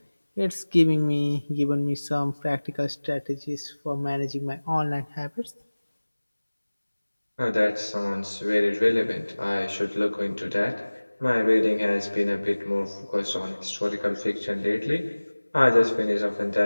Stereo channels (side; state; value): both; inverted; correlation -1.00